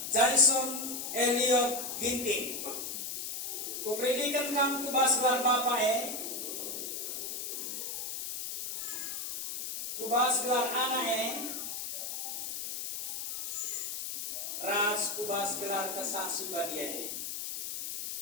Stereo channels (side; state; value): left; noise; hiss, 5 dB below the sound